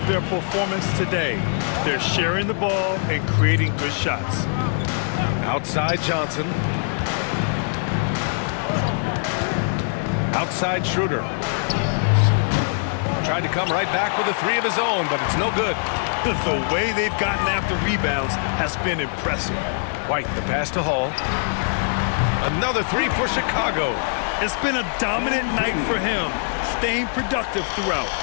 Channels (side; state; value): right; silent; 55 dB below the other